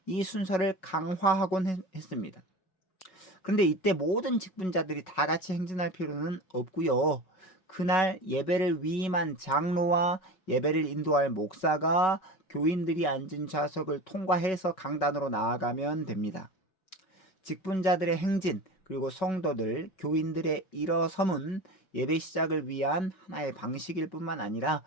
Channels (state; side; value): late; right; 5.3 ms